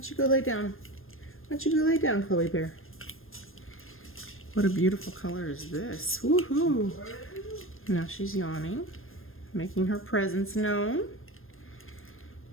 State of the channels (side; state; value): right; late; 0.60 ms